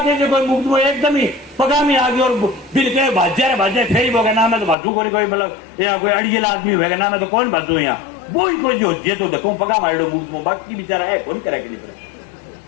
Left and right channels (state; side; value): drops out; right; at 4.8 s